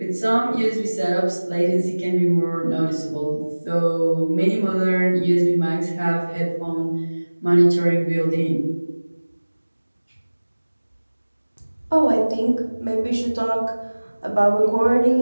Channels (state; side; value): inverted; both; correlation -1.00